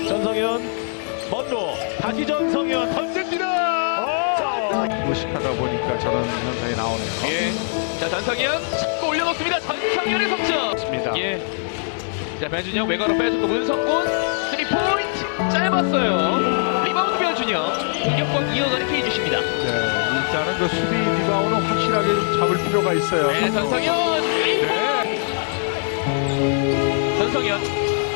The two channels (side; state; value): right; silent; digital silence